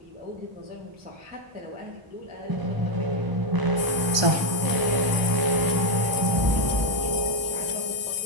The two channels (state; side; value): late; left; 1.2 ms